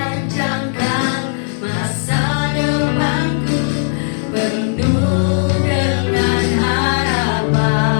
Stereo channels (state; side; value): silent; right; 57 dB below the other